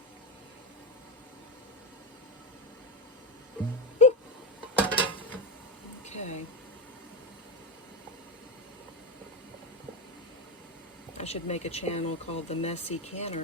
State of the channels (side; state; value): both; normal; correlation 0.13